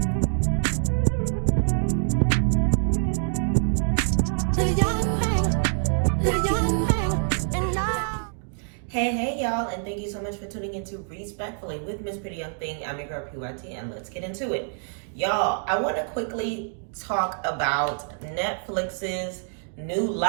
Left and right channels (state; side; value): silent; left; digital silence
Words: The young thing, and now. Hey, y'all, and thank you so much for tuning into Respectfully with Miss Pretty Young Thing. I'm your girl, PYT, and let's get into it. Y'all, I want to quickly talk about Netflix's new